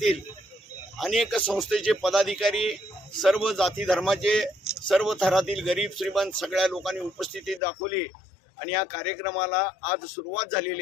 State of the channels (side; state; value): right; drops out; at 7.6 s